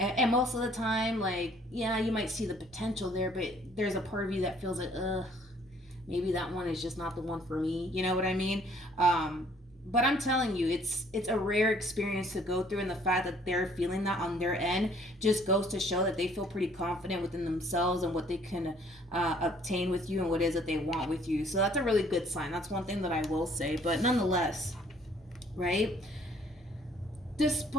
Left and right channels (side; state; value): both; normal; correlation 0.60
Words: most of the time, like, yeah, you might see the potential there, but there's a part of you that feels like, maybe that one is just not the one for me. You know what I mean? But I'm telling you, it's a rare experience to go through, and the fact that they're feeling that on their end just goes to show that they feel pretty confident within themselves and what they can obtain with you and what it is that they want with you. So that's a really good sign. That's one thing that I will say. But nonetheless, right?